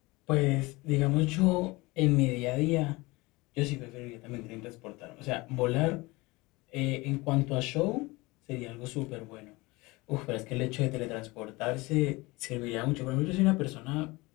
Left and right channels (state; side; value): quieter; right; 22.8 dB